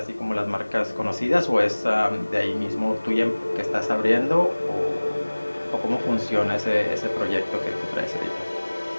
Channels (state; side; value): inverted; both; correlation -1.00